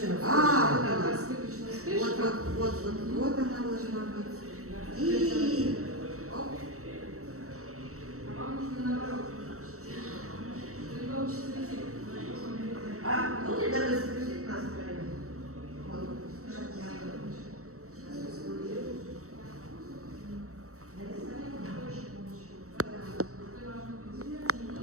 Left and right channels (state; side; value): late; left; 0.64 ms